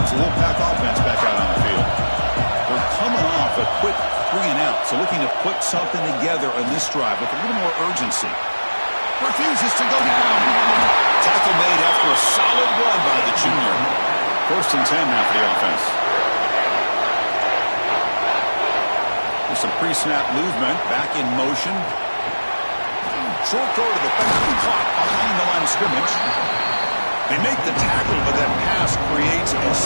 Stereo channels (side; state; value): both; inverted; correlation -1.00